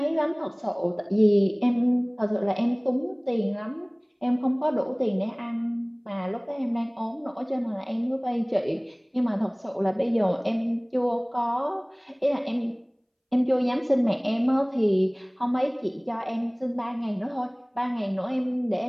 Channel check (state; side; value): identical; both; correlation 1.00